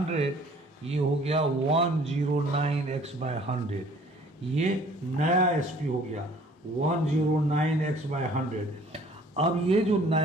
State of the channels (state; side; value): normal; both; correlation 0.54